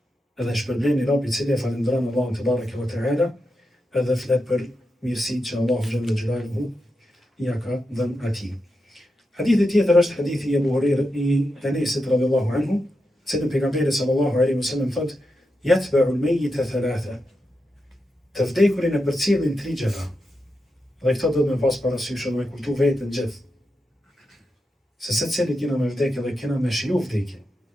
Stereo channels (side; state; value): both; normal; correlation 0.87